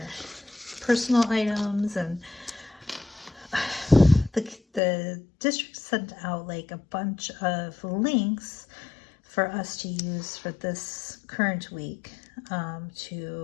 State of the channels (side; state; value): right; drops out; at 4.8 s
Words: personal items. And the district sent out like a bunch of links for us to use for this current week,